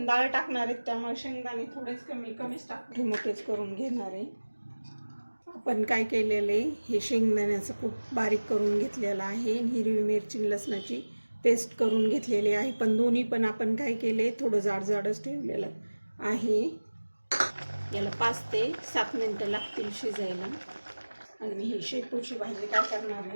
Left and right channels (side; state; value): both; inverted; correlation -1.00